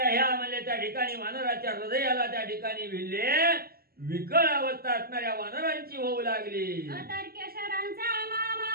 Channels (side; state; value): left; late; 0.44 ms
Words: ह्या म्हणजे त्या ठिकाणी वानराच्या हृदयाला त्या ठिकाणी भिडले. विकळ अवस्था असणाऱ्या वानरांची होऊ लागली. अतर्क्य शरांचा